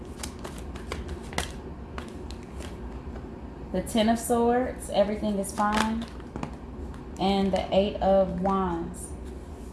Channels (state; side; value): identical; both; correlation 1.00